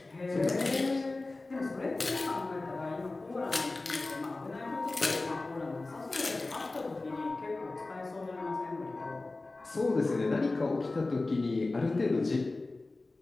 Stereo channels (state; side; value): quieter; right; 3.2 dB